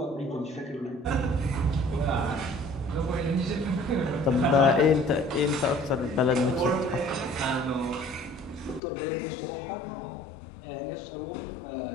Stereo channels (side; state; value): right; drops out; at 8.8 s